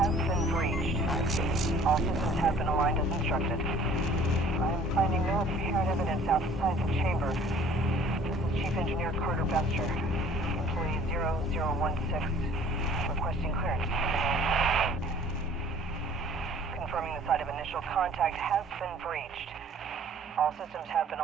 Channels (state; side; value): normal; both; correlation 0.52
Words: been breached. Access. All systems have been aligned as instructed. I am finding no apparent evidence outside the chamber. This is Chief Engineer Carter Bester, employee 0016, requesting clearance. Confirming the site of initial contact has been breached. All systems have been